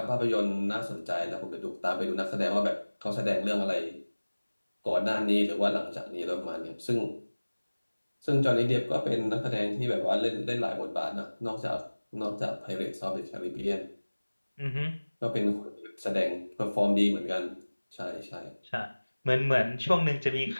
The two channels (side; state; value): both; inverted; correlation -1.00